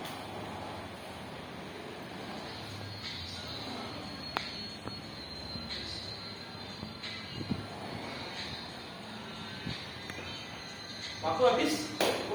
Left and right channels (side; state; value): both; identical; correlation 1.00